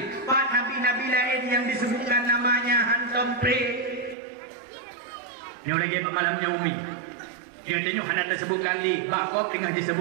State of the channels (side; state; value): left; drops out; at 4.2 s